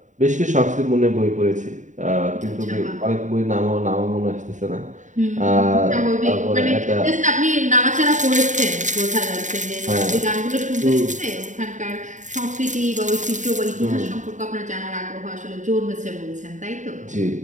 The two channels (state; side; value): late; left; 0.36 ms